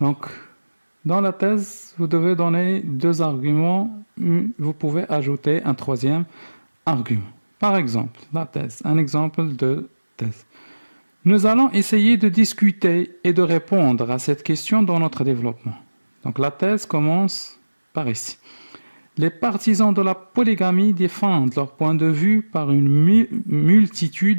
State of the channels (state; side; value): inverted; both; correlation -1.00